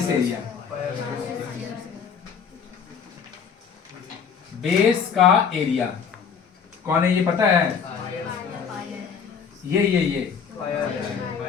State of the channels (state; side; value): quieter; right; 6.6 dB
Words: area, base का area कौन है ये पता है? ये ये